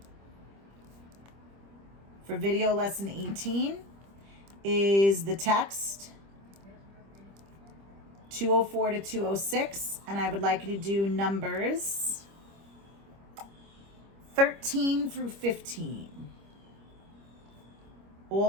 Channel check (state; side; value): late; left; 25 ms